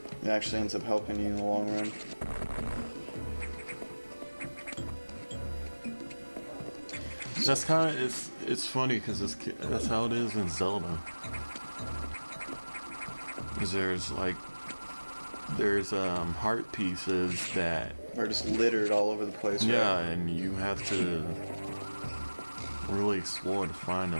it actually ends up helping you in the long run. That's kind of, it's funny because that's how it is in Zelda. Because there's heart pieces that Are just littered all over the place. yeah, Right? and you have to really explore to find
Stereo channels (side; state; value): both; inverted; correlation -1.00